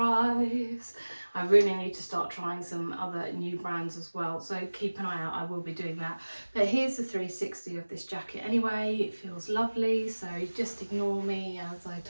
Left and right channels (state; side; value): inverted; both; correlation -1.00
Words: I really need to start trying some other new brands as well, so keep an eye out. I will be doing that. But here's the 360 of this jacket anyway. It feels lovely, so just ignore me as I